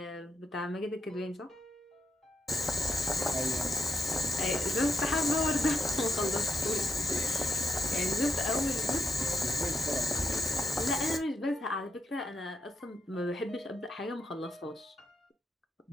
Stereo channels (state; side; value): normal; both; correlation 0.79